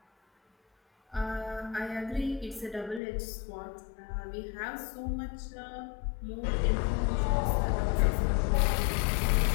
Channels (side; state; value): right; drops out; at 3.0 s